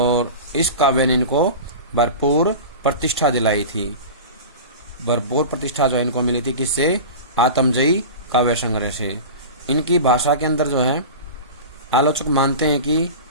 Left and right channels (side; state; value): both; inverted; correlation -0.31